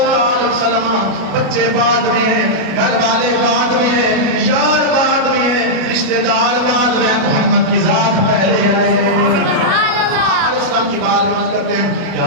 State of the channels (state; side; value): late; left; 37 ms